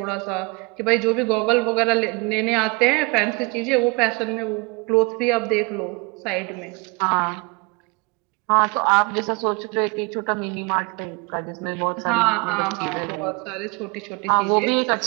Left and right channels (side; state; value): left; quieter; 28.3 dB